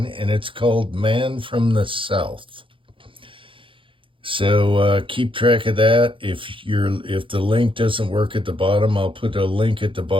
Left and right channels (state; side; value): late; left; 0.25 ms